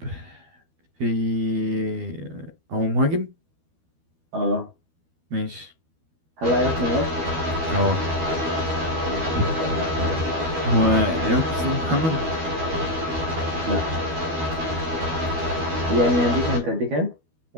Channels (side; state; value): left; late; 12 ms